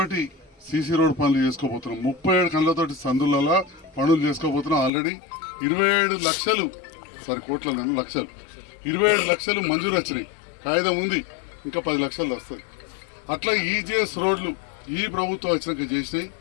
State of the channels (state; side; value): drops out; right; at 4.9 s